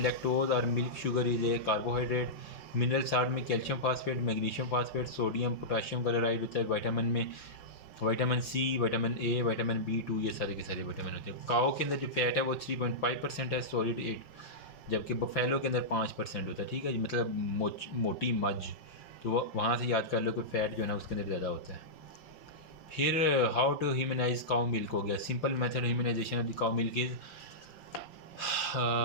लैक्टोज और milk sugar is a carbohydrate. Mineral salt में calcium phosphate, magnesium phosphate, sodium potassium chloride होता है। Vitamin में vitamin C, vitamin A, vitamin B2 ये सारे के सारे विटामिन होते हैं। काओ के अंदर जो फैट है वो 3.5% है, सॉलिड 8, जबकि बफेलो के अंदर 5% होता है, ठीक है जी। मतलब मोटी मझ, तो वहाँ से याद कर लो कि फ़ैट जो है ना उसके अंदर ज़्यादा होता है। फिर how to humanise cow milk हो गया। Simple method humanisation of the cow milk is,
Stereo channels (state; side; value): late; right; 5.9 ms